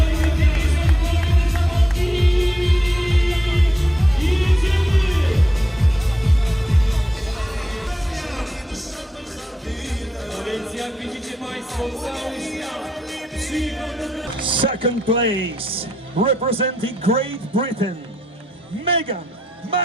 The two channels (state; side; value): normal; both; correlation 0.83